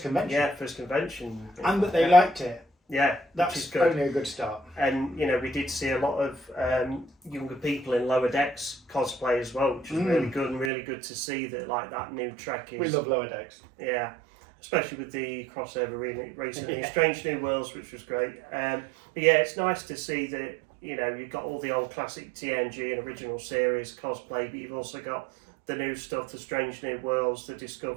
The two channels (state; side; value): drops out; left; at 10.7 s